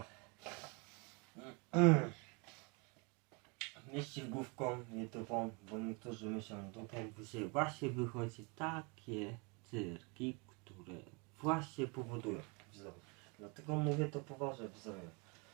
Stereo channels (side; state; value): left; quieter; 31.3 dB